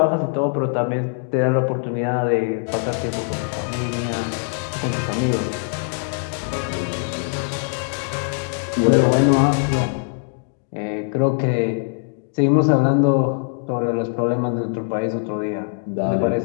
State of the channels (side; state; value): right; silent; 64 dB below the other